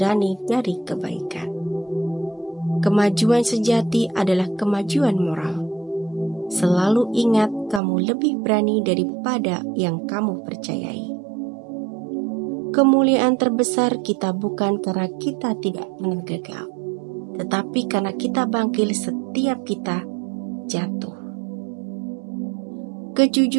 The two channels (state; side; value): drops out; left; at 7.8 s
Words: dari kebaikan. Kemajuan sejati adalah kemajuan moral. Selalu ingat, kamu lebih berani daripada yang kamu percayai. Kemuliaan terbesar kita bukan karena kita tidak pernah gagal, tetapi karena kita bangkit setiap kita jatuh.